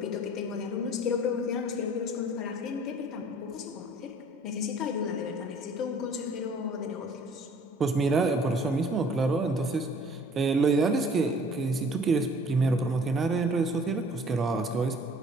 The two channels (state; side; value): normal; both; correlation 0.53